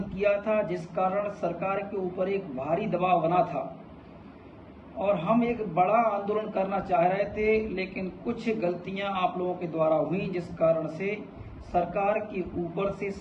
किया था, जिस कारण सरकार के ऊपर एक भारी दबाव बना था और हम एक बड़ा आंदोलन करना चाह रहे थे, लेकिन कुछ गलतियां आप लोगों के द्वारा हुई, जिस कारण से सरकार के ऊपर से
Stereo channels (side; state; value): both; identical; correlation 1.00